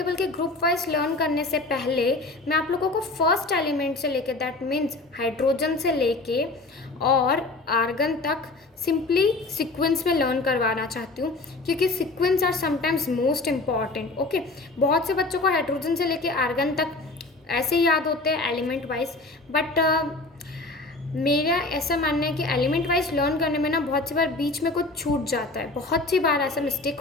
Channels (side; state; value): right; quieter; 3.2 dB